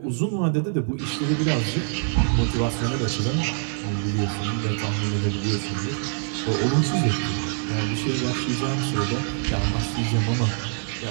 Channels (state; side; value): silent; left; digital silence